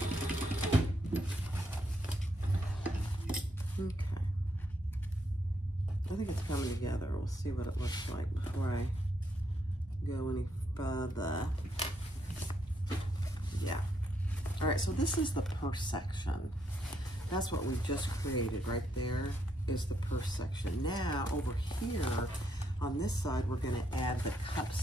I think it's coming together. We'll see what it looks like before I go any further. Yeah. All right, so this is the purse section. That's what we just created right there is the purse section. Now over here on this side, we're gonna add the cup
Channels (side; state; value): both; normal; correlation 0.76